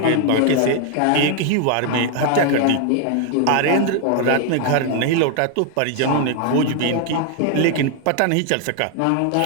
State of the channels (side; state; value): both; different; correlation 0.01